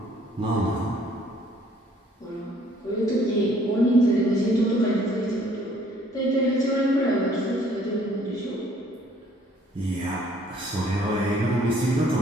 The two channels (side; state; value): both; normal; correlation 0.60